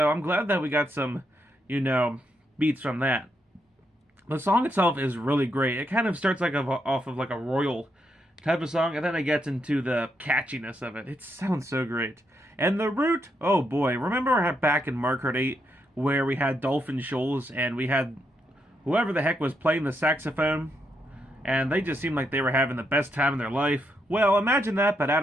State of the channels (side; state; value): both; normal; correlation 0.80